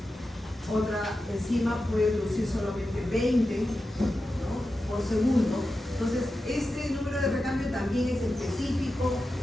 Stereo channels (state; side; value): normal; both; correlation 0.91